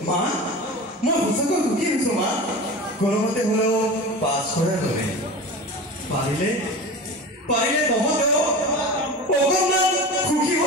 মা, মই সঁচাকৈ সুখী হৈছোঁ মা। কোনোমতে হ'লেও পাছ কৰাৰ বাবে পাৰিলে তহঁতেও অকণমান সুখী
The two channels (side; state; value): both; normal; correlation 0.32